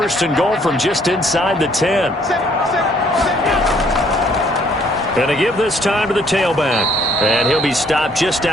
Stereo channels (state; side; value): normal; both; correlation 0.64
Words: and goal from just inside the 10. Going to give this time to the tailback. And he'll be stopped just